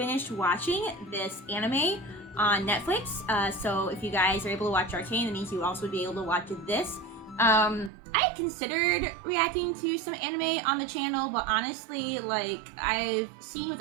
watching this anime on Netflix, so if you guys are able to watch Arcane, that means you also would be able to watch this. I had considered reacting to some anime on the channel, but honestly, like, I've seen with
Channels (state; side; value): drops out; left; at 7.9 s